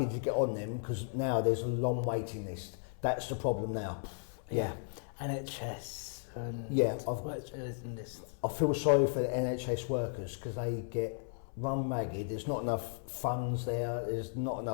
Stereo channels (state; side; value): silent; right; 54 dB below the other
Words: to get on them because now there's a long waiting list. That's the problem now. Yeah. NHS. And yeah, this. I feel sorry for the NHS workers because they get run ragged. There's not enough funds there. There's not